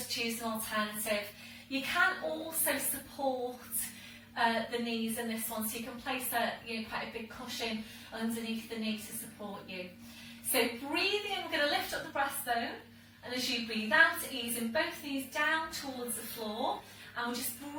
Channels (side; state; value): both; identical; correlation 1.00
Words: choose an alternative. You can also support the knees in this one, so you can place quite a big cushion underneath the knee to support you. So breathing in, we're going to lift up the breastbone, and as you breathe out, easing both knees down towards the floor, and we'll just